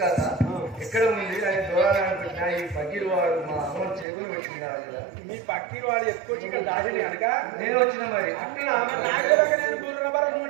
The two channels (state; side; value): drops out; left; at 4.0 s